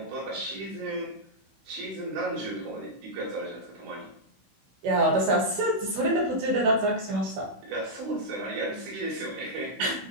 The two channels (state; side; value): late; left; 16 ms